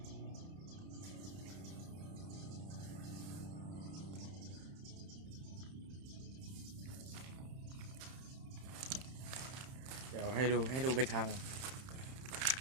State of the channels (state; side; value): late; left; 31 ms